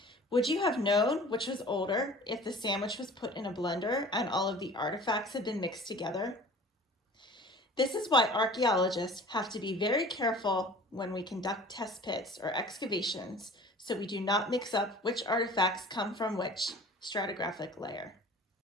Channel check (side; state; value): both; normal; correlation 0.44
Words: Would you have known which was older if the sandwich was put in a blender and all of the artifacts had been mixed together? This is why archaeologists have to be very careful when we conduct test pits or excavations so we do not mix up which artifacts come from which stratigraphic layer.